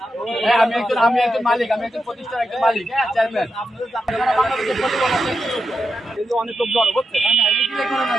হ্যাঁ, আমি একজন মালিক, আমি একজন প্রতিষ্ঠানের একজন মালিক, হ্যাঁ, চেয়ারম্যান। অনেক লোক জড়ো হচ্ছে।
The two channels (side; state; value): both; normal; correlation 0.87